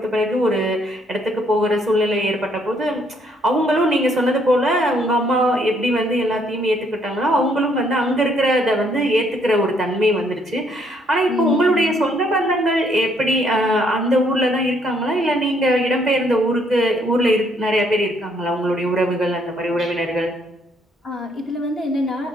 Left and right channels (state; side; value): normal; both; correlation 0.68